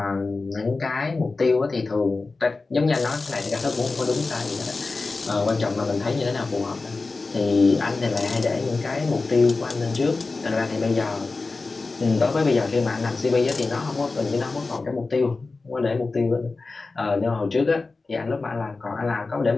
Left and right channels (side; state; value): right; quieter; 3.8 dB